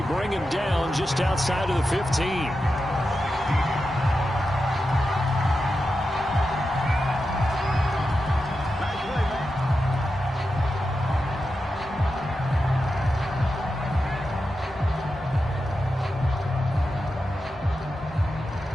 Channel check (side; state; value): both; normal; correlation 0.90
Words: bring him down just outside of the 15.